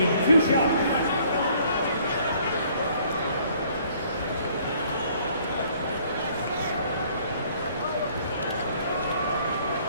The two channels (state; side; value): inverted; both; correlation -0.60